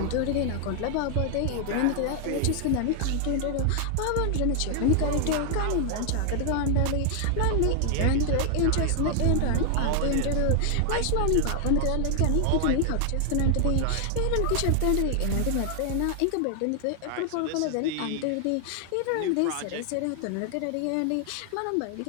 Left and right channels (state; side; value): different; both; correlation 0.00